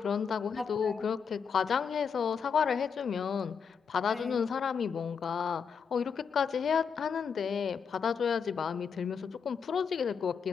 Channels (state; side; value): quieter; right; 6.4 dB